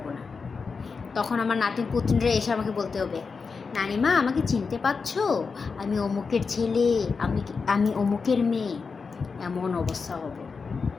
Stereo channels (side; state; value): right; quieter; 5.0 dB